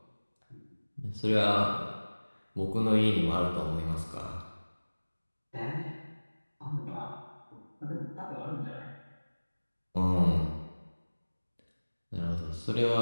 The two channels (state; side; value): inverted; both; correlation -1.00